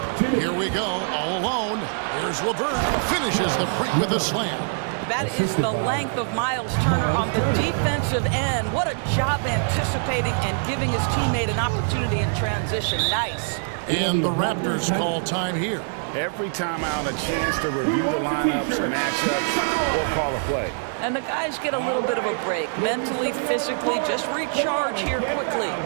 Here we go, all alone. Here's LeVert. Finishes the break with a slam. That is the length of Miles Turner on the defensive end. What a job anticipating and giving his teammate an opportunity in transition. Nice. And the Raptors call time here. Every time out, a chance to review the lineups, matchups, or call a play. And the guys get a little bit of a break. Mentally, physically, just recharge here quickly.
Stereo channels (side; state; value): left; silent; digital silence